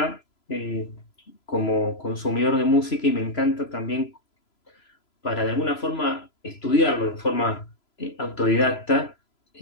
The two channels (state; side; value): late; right; 3.0 ms